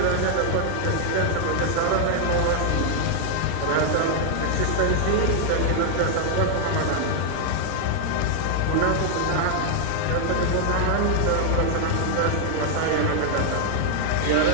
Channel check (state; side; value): different; both; correlation 0.00